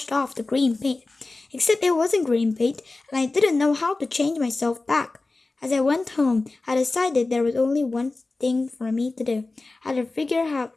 off the green paint. Except it wasn't green paint, and I didn't know how to change myself back. As I went home, I decided there was only one thing for me to do. I had to figure out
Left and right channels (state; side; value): quieter; right; 3.3 dB